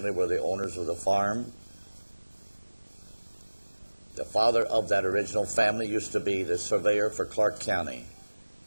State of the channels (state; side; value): inverted; both; correlation -1.00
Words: were the owners of the farm. The father of that original family used to be the surveyor for Clark County.